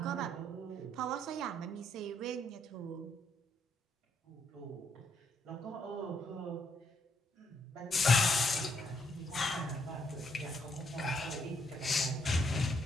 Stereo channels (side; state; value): both; normal; correlation 0.74